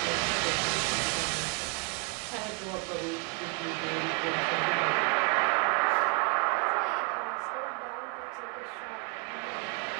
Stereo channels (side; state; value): left; quieter; 36.4 dB